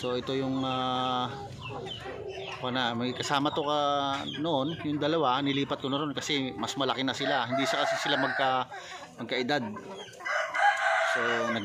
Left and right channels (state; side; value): identical; both; correlation 1.00